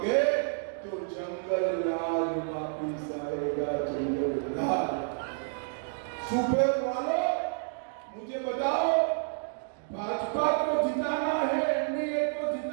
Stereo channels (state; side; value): silent; left; digital silence